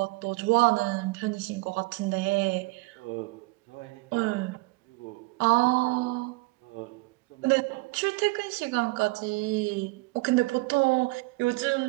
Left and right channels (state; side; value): quieter; left; 24.6 dB